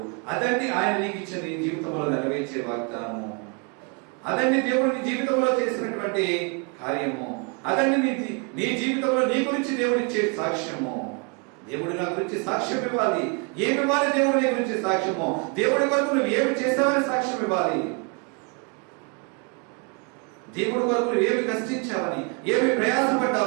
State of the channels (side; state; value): left; quieter; 34.5 dB